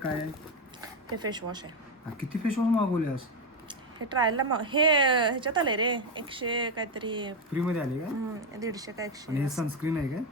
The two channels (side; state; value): both; normal; correlation 0.08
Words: आहे? हे फेस वॉश आहे. किती फेस वॉश मागवल्यास? हे ट्रायलला हे ह्याच्यात आले रे 100 काहीतरी फ्री मध्ये आले का? 150 का 100. आणि हे सनस्क्रीन आहे का?